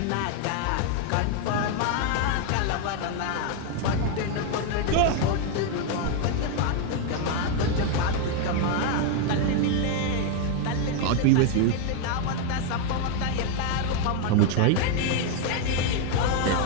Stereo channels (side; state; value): both; different; correlation 0.01